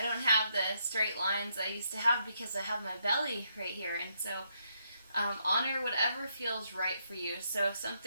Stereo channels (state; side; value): inverted; both; correlation -0.76